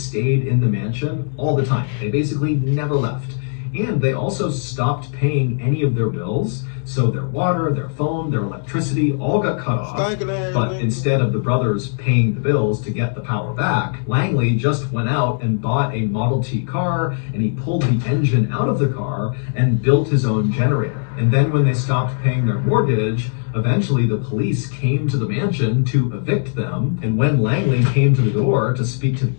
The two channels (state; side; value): silent; right; digital silence